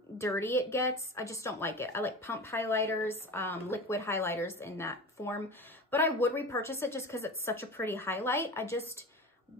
dirty it gets. I just don't like it. I like pump highlighters, liquid highlighters in that form. But I would repurchase it just because it's such a pretty highlight. I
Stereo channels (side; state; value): both; normal; correlation 0.31